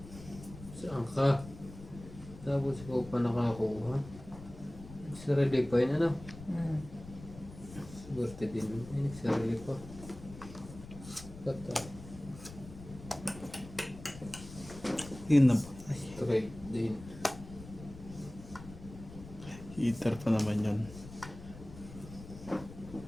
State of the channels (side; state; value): left; noise; rumble, 15 dB below the sound